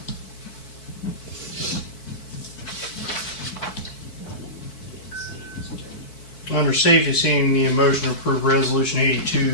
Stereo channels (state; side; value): late; right; 4.6 ms